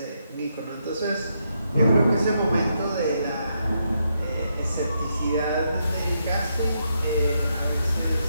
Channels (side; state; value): both; inverted; correlation -0.80